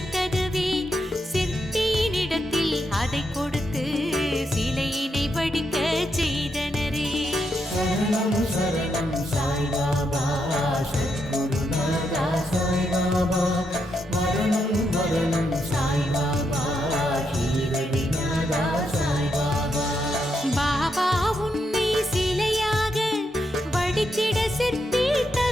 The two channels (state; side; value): normal; both; correlation 0.81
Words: சிற்பியினிடத்தில் அதை கொடுத்து சிலையினை வடிக்க செய்தனரே சரணம் சரணம் சாய்பாபா சத்குருநாதா சாய்பாபா மரணம் மரணம் சாய்பாபா ஷீரடிநாதா சாய்பாபா பாபா உன்னை சிலையாக வடித்திட சிற்பி